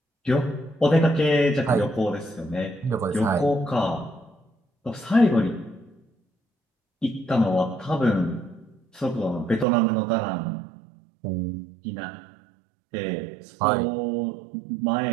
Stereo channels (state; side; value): drops out; left; at 9.7 s